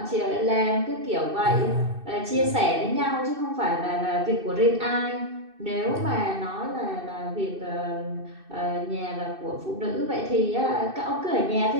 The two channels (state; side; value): late; left; 2.6 ms